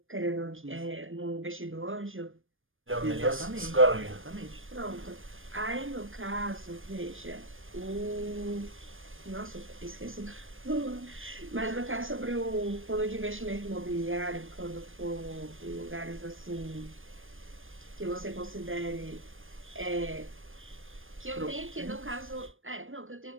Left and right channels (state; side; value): late; left; 0.59 ms